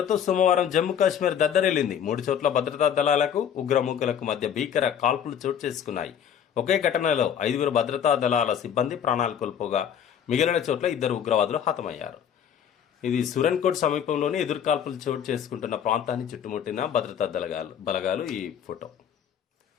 సోమవారం జమ్మూ కాశ్మీర్ దద్దరిల్లింది. 3 చోట్ల భద్రతా దళాలకు ఉగ్రమూకలకు మధ్య భీకర కాల్పులు చోటు చేసుకున్నాయి. ఒకే ఘటనలో 5 భద్రతా దళాల సిబ్బంది ప్రాణాలు కోల్పోగా మిగిలిన చోట్ల 2 ఉగ్రవాదులు హతమయ్యారు. ఇది సురన్కోట్ సమీపంలోని ఎదురుకాల్పులు చోటు చేసుకుంటున్న ప్రాంతాన్ని చుట్టుముట్టిన భద్రతా బలగాలు. ఈ ఫోటో.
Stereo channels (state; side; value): quieter; right; 8.8 dB